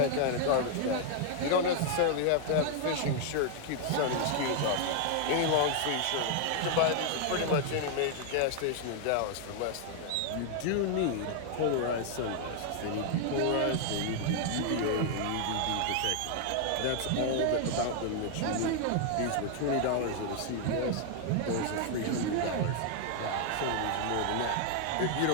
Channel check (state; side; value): different; both; correlation 0.00